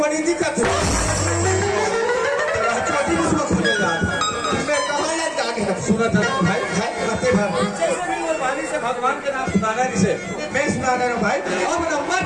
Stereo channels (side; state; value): both; identical; correlation 1.00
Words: दिखत है छोटी मुझको खुले यार मैं कहाँ लग जाके सुना था भाई करते भाई वाली से भगवान के नाम सुनाना जिसे मैं सुनाना हूँ भाई अब नंबर